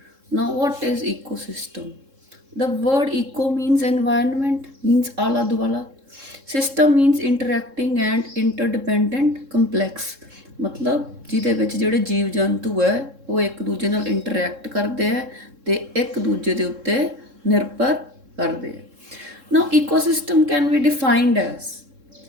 Now, what is ecosystem? The word eco means environment, means ala duala. System means interacting and interdependent complex. ਮਤਲਬ ਜਿਹਦੇ ਵਿੱਚ ਜਿਹੜੇ ਜੀਵ ਜੰਤੂ ਹੈ ਉਹ ਇੱਕ ਦੂਜੇ ਨਾਲ ਇੰਟਰੈਕਟ ਕਰਦੇ ਹੈ ਤੇ ਇੱਕ ਦੂਜੇ ਦੇ ਉੱਤੇ ਨਿਰਭਰ ਕਰਦੇ ਹੈ. Now, ecosystem can be defined as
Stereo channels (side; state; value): left; late; 3.7 ms